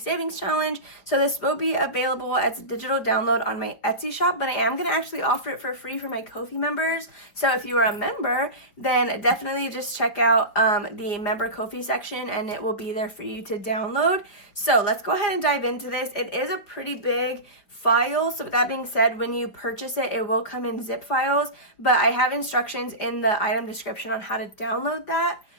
Challenge. So this will be available as a digital download on my Etsy shop, but I am going to actually offer it for free for my Ko-fi members. So if you are a member, then definitely just check out the member Ko-fi section, and it will be there for you to download. So let's go ahead and dive into this. It is a pretty big file. So with that being said, when you purchase it, it will come in zip files, but I have instructions in the item description on how to download that.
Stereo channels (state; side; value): late; right; 5.3 ms